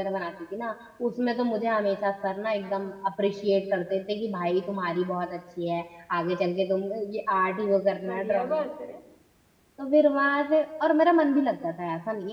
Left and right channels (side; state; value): both; identical; correlation 1.00